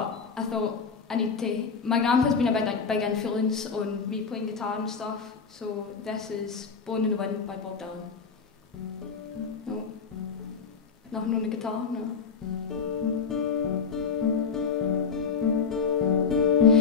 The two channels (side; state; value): right; quieter; 5.6 dB